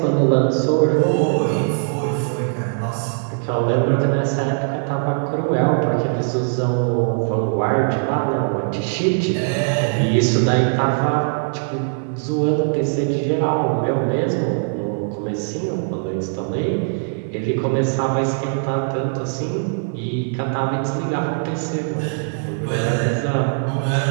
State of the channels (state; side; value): silent; left; 60 dB below the other